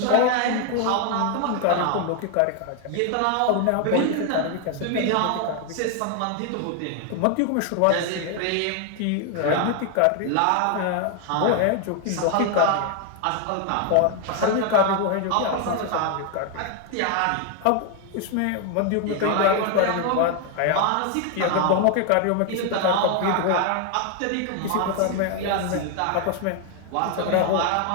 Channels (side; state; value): both; different; correlation 0.01